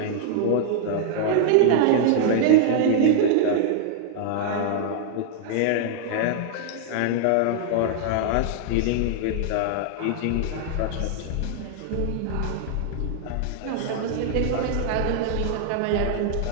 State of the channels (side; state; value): both; different; correlation -0.01